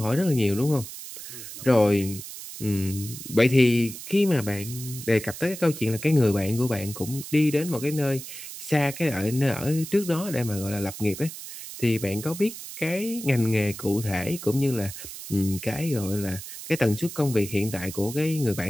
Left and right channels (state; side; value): noise; right; hiss, 11 dB below the sound